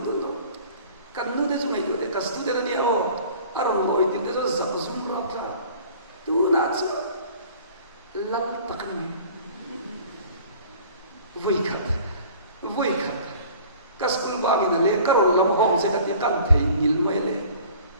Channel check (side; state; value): both; inverted; correlation -0.47